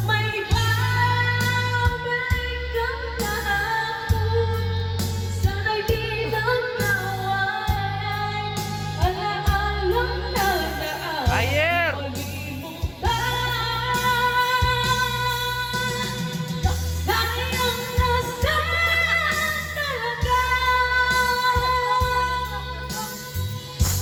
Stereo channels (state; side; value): identical; both; correlation 1.00